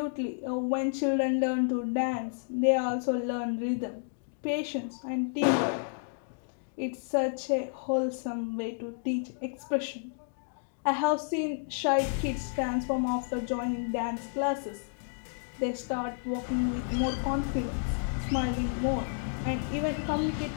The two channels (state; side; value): silent; right; digital silence